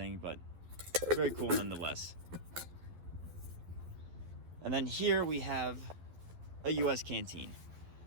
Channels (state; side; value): late; left; 11 ms